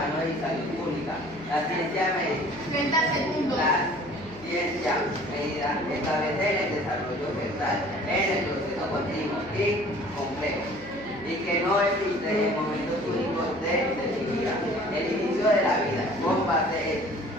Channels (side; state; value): right; noise; hum, 20 dB below the sound